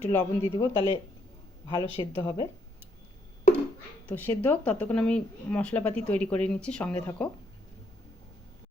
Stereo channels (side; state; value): both; normal; correlation 0.72